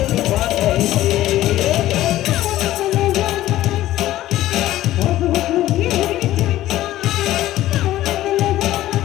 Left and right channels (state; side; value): quieter; right; 14.6 dB